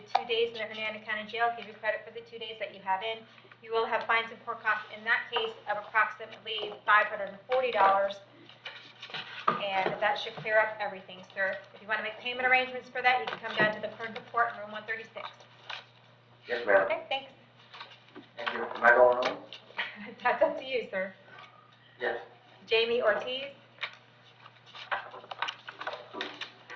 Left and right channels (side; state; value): both; identical; correlation 1.00